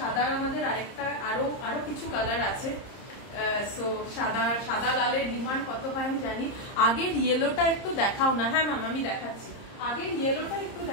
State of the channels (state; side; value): late; right; 30 ms